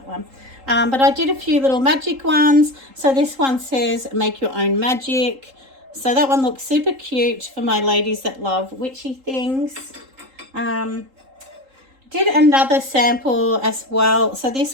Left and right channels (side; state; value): left; late; 3.8 ms